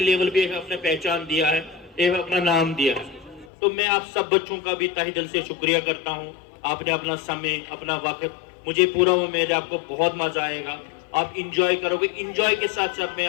लेवल पे अपने पहचान दिया है, अपना नाम दिया है। तो मैं आप सब बच्चों का भी तहे दिल से शुक्रिया करता हूँ। आपने अपना समय, अपना वक्त, मुझे पूरा उम्मीद है आपको बहुत मजा आएगा, आप इंजॉय करोगे। इंजॉय के साथ साथ में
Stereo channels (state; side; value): drops out; right; at 3.5 s